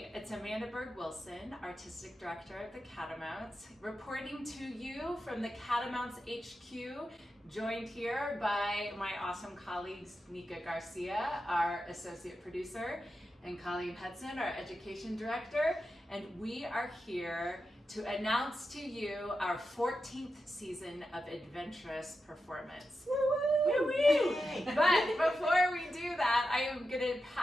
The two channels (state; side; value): normal; both; correlation 0.89